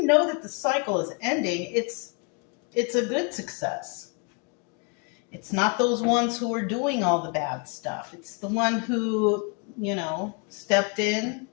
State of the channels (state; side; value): quieter; right; 33.6 dB